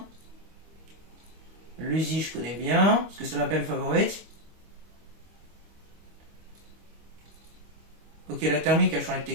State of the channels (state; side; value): late; left; 25 ms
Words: L'Uzi je connais bien, parce que c'est ma peine favorite. Ok, la thermique a changé de